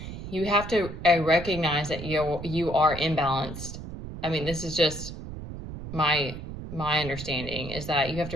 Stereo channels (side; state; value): right; noise; rumble, 10 dB below the sound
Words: you have to recognize that you are imbalanced. I mean, this is just my understanding, is that you have to